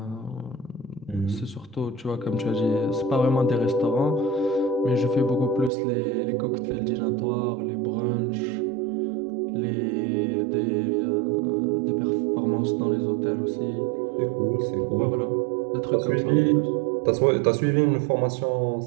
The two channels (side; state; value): left; drops out; at 5.7 s